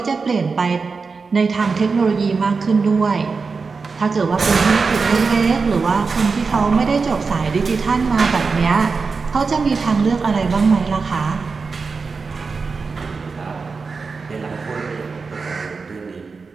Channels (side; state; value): left; quieter; 4.7 dB